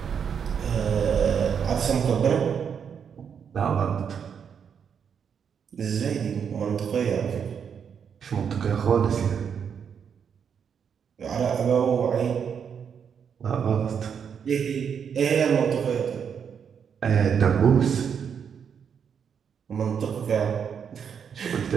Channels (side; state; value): left; quieter; 7.3 dB